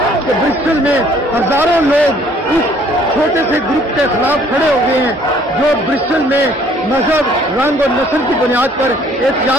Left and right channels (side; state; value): both; normal; correlation 0.59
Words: कि ब्रिस्टल में हजारों लोग उस छोटे से ग्रुप के खिलाफ खड़े हो गए हैं जो ब्रिस्टल में मजहब, रंग और नस्ल की बुनियाद पर